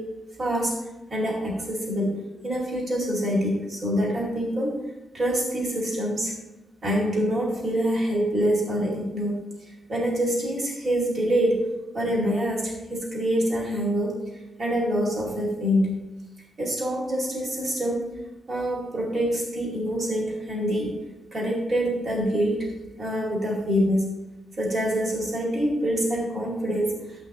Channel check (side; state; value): both; normal; correlation 0.77